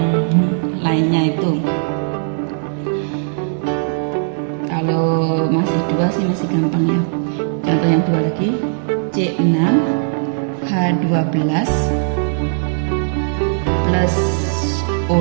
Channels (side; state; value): left; silent; digital silence